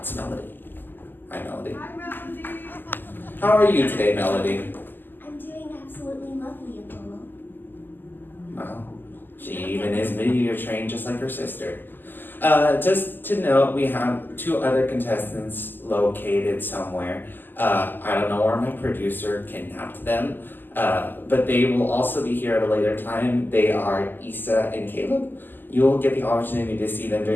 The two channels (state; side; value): late; right; 0.091 ms